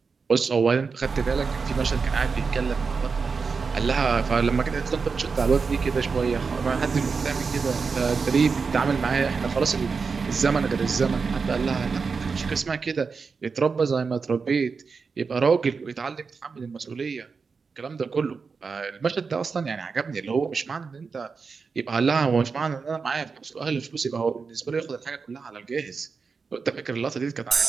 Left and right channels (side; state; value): left; quieter; 5.0 dB